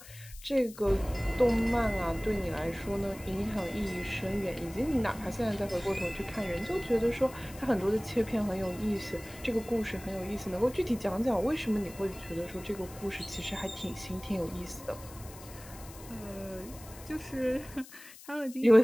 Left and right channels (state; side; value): noise; left; hiss, 18 dB below the sound